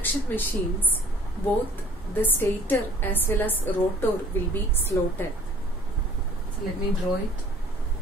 machines, both the stator as well as rotor will be slotted. So let me draw it.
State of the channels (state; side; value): normal; both; correlation 0.53